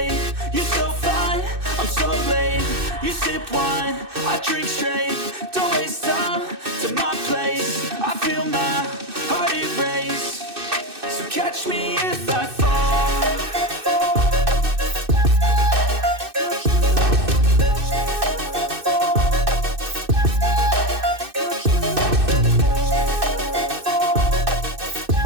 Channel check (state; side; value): late; left; 2.6 ms